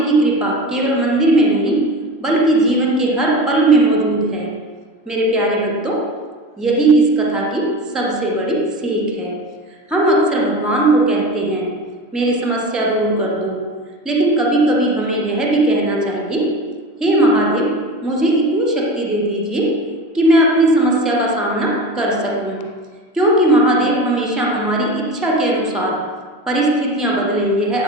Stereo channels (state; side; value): normal; both; correlation 0.30